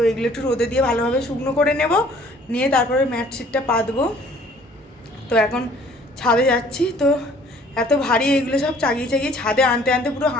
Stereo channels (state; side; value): normal; both; correlation 0.56